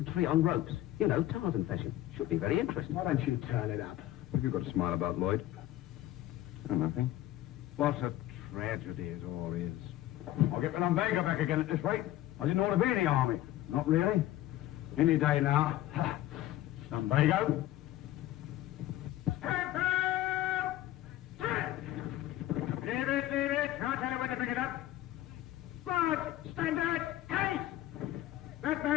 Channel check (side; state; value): right; quieter; 14.6 dB